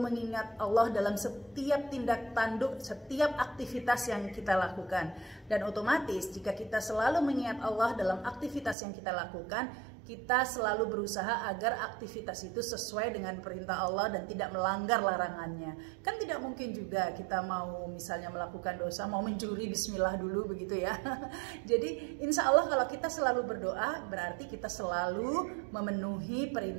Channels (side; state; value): left; drops out; at 8.8 s